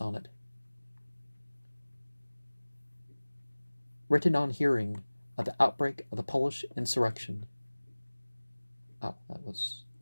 Written on hearing of the outbreak of the Polish insurrection. Oh, that was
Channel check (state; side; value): inverted; both; correlation -1.00